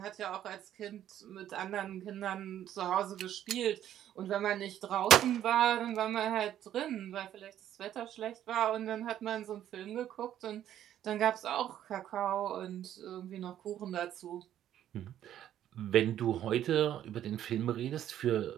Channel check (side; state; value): left; quieter; 11.3 dB